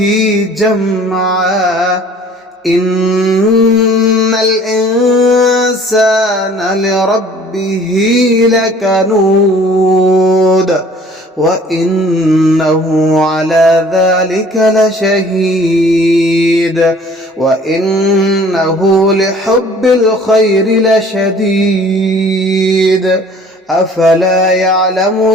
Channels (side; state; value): both; normal; correlation 0.52